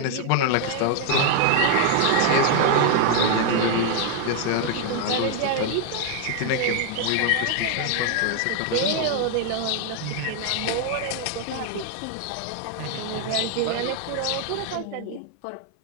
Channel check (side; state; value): both; different; correlation 0.00